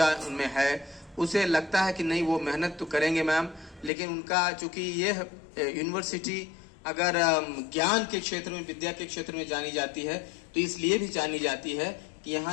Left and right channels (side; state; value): right; drops out; at 3.9 s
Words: उनमें है, उसे लगता है कि नहीं, वो मेहनत तो करेंगे मैम, लेकिन उनका चूँकि ये यूनिवर्सिटी अगर ज्ञान के क्षेत्र में, विद्या के क्षेत्र में जानी जाती है, तो इसलिए भी जानी जाती है कि